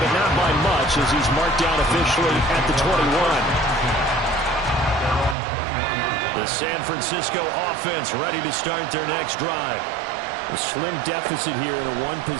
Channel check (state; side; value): drops out; left; at 5.4 s